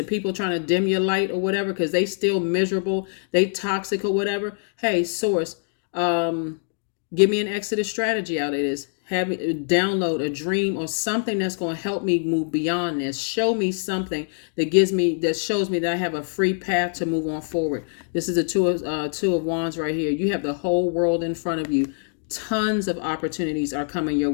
people trying to dim your light or whatever, because they still miserable, they toxic or whatever. Hey, Source, give me an exodus strategy out of this. Have me download a dream or something that's going to help me move beyond this. Show me something that shows me that I have a free path to move on forward. This is a two of wands right here. You have the whole world in front of you. tons of opportunities are coming your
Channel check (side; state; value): right; silent; 63 dB below the other